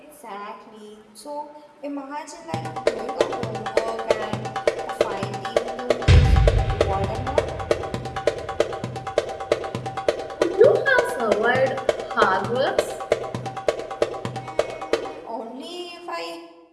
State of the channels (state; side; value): identical; both; correlation 1.00